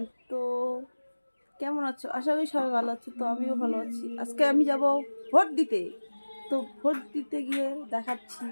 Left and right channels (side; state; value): both; inverted; correlation -1.00